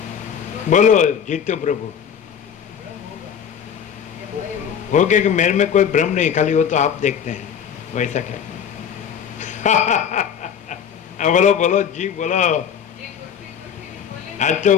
बोलो जीतो प्रभु। हो गया कि मेरे में कोई भ्रम नहीं, खाली वो तो आप देखते हैं, वैसा क्या? बोलो बोलो जी बोलो। आज तो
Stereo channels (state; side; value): quieter; right; 8.0 dB